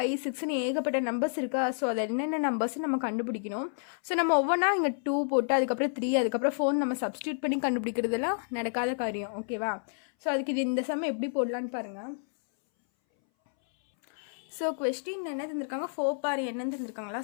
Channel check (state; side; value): silent; right; 58 dB below the other